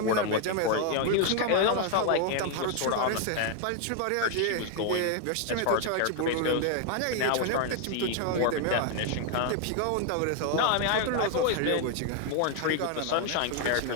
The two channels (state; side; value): different; both; correlation 0.00